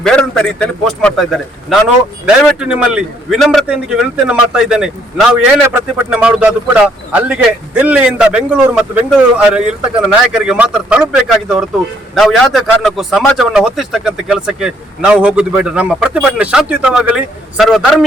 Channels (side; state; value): both; normal; correlation 0.68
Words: ಬೇರೆಂತ ರೀತಿಯಲ್ಲಿ ಪೋಸ್ಟ್ ಮಾಡ್ತಾ ಇದ್ದಾರೆ. ನಾನು ದಯವಿಟ್ಟು ನಿಮ್ಮಲ್ಲಿ ವಿನಮ್ರತೆಯೊಂದಿಗೆ ವಿನಂತಿಯನ್ನು ಮಾಡ್ತಾ ಇದ್ದೇನೆ. ನಾವು ಏನೇ ಪ್ರತಿಭಟನೆ ಮಾಡುವುದು ಅದು ಕೂಡ ಅಲ್ಲಿಗೆ ದಿಲ್ಲಿಯಿಂದ ಬೆಂಗಳೂರು ಮತ್ತು ಬೆಂಗಳೂರು ಇರತಕ್ಕಂಥ ನಾಯಕರಿಗೆ ಮಾತ್ರ ತಲುಪಬೇಕಾಗಿದೆ ಹೊರತು ನಾವು ಯಾವುದೇ ಕಾರಣಕ್ಕೂ ಸಮಾಜವನ್ನು ಹೊತ್ತಿಸ್ತಕ್ಕಂಥ ಕೆಲಸಕ್ಕೆ ನಾವು ಹೋಗುದು ಬೇಡ. ನಮ್ಮ ಪ್ರತಿಭಟನೆ ಶಾಂತಿಯುತವಾಗಲಿ, ಸರ್ವ